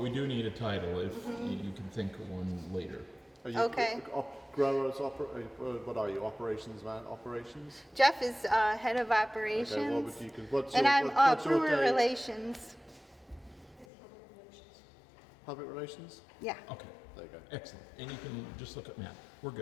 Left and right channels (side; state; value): right; drops out; at 13.9 s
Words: do need a title if you can think of one later. Are you Okay. Growers, what are you, operations man, operations? Jeff is head of operations, Okay, what would you, what's and your, I'm what's your brewer day? relations. Public relations? Yeah. Okay. There you go. Excellent. And you can just look at Matt. We're